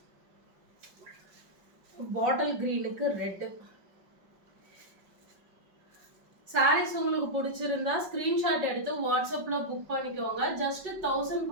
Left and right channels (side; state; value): left; late; 5.3 ms